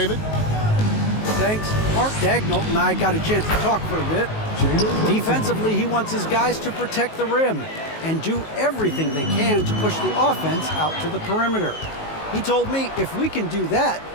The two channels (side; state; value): right; late; 19 ms